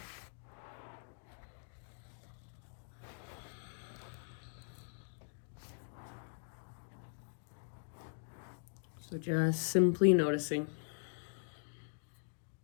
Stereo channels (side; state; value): right; silent; digital silence